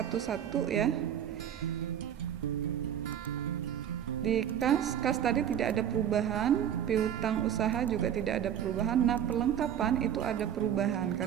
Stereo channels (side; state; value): left; quieter; 9.6 dB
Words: ya. Di kas tadi tidak ada perubahan, piutang usaha juga tidak ada perubahan. Nah, perlengkapan itu ada perubahan